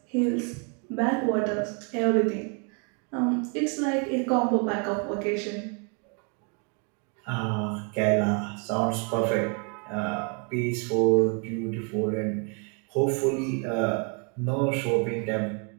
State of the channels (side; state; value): left; quieter; 37.4 dB